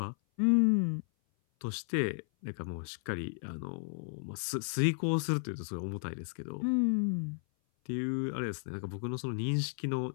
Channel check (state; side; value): silent; right; 55 dB below the other